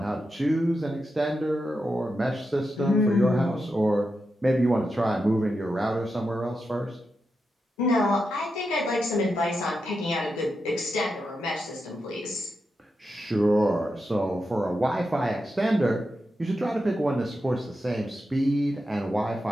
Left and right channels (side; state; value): both; normal; correlation 0.87